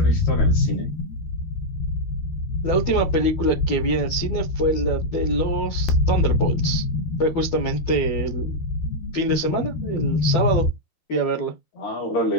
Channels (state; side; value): late; right; 12 ms